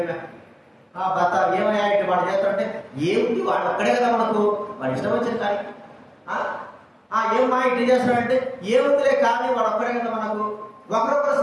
భర్త ఏమయ్యా ఇటు వాడు చేస్తాడంటే ఏముంది, వాడు ఒక్కడే కదా మనకు, వాడు ఇష్టం వచ్చింది కానీ ఏమా ఇటు చేస్తాడంటే ఏముందిలే కానీ వాడు ఒక్కడే కదా మనకు. ఒకరొకరు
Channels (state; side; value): identical; both; correlation 1.00